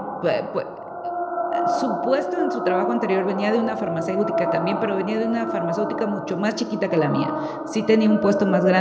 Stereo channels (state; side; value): identical; both; correlation 1.00